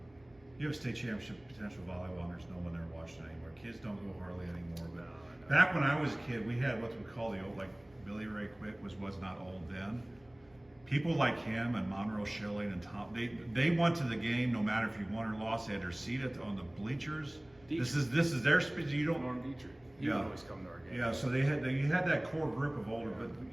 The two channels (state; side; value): noise; right; hum, 29 dB below the sound